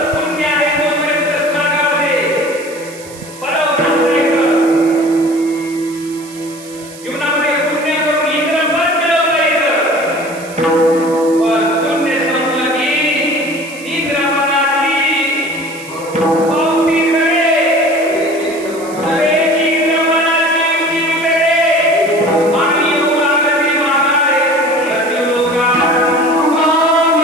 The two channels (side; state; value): right; noise; hiss, 18 dB below the sound